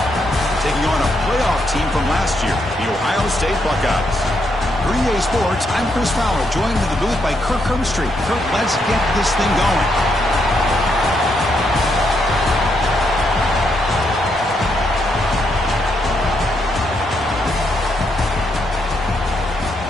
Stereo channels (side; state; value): both; normal; correlation 0.78